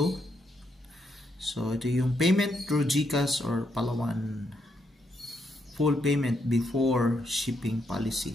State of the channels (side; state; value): both; normal; correlation 0.78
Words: So, ito yung payment through GCash or Palawan. Full payment before shipping